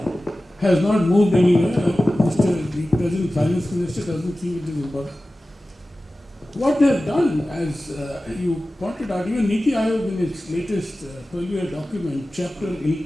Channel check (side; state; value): both; normal; correlation 0.96